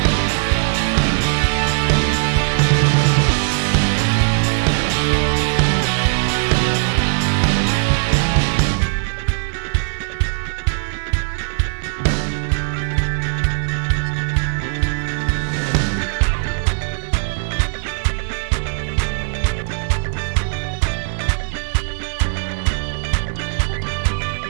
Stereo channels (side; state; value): left; silent; digital silence